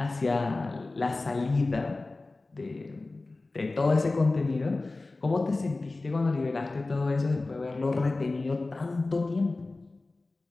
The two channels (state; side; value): quieter; right; 3.3 dB